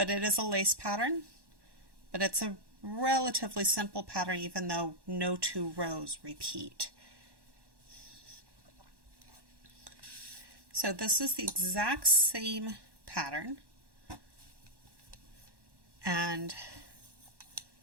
it is a lace pattern, but it's a relatively simple pattern even though no two rows repeat. So this is the exact same pattern,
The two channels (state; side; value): late; left; 1.1 ms